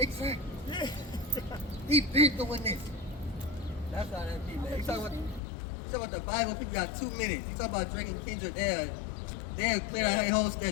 Yeah. He been doing this. That's how that be, man. You talking about the Bible, people got 2 minutes. You talking about Drake and Kendrick, they'll clear out their whole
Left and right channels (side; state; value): right; drops out; at 5.4 s